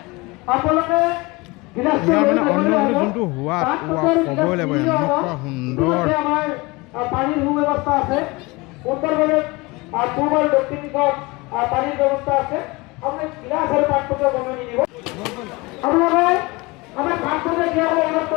আপোনালোকে ইয়াৰ মানে অন্নমুঠি যোনটো সোৱাদ ক'বই লাগিব এনেকুৱা সুন্দৰ আমাৰ পানীৰ সুব্যৱস্থা আছে উত্তৰভাৱে পূব আৰু দক্ষিণ দিশত পানীৰ ব্যৱস্থা আছে আপুনি গিলাচ আৰু পাত্ৰকে বনাই নিদিব আপোনালোকে আমাৰ পাত্ৰকে দিয়াবলৈ অনুৰোধ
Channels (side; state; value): right; quieter; 24.2 dB